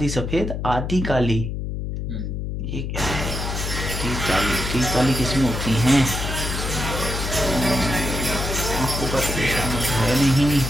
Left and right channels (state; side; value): noise; left; hum, 4 dB below the sound